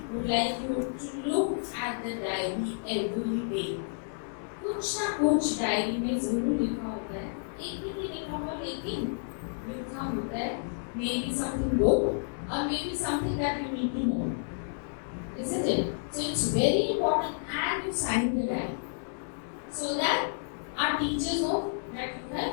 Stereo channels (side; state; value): right; silent; digital silence